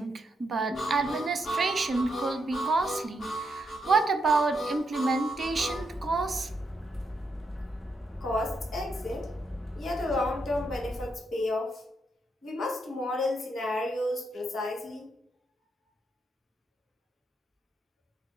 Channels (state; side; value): normal; both; correlation 0.80